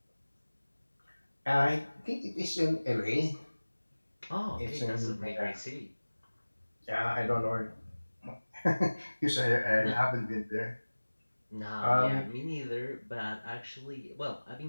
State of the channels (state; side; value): inverted; both; correlation -1.00